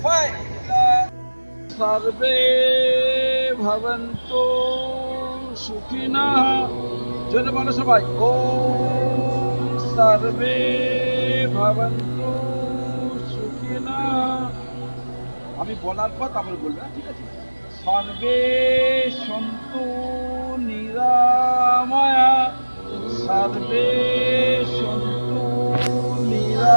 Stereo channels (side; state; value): both; inverted; correlation -1.00